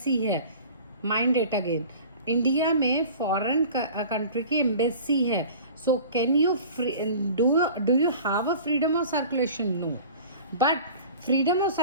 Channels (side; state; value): both; inverted; correlation -0.42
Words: है, माइंड इट अगेन, इंडिया में foreign country की embassy है, so can you do you have a freedom of circulation? No, but freedom of